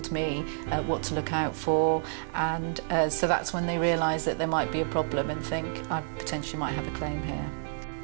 me what to look out for, and so that's when they realise that there might be a problem and think I potentially might have a claim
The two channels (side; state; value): left; silent; digital silence